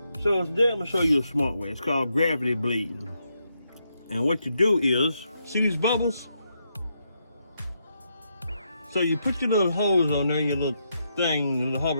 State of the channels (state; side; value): inverted; both; correlation -0.81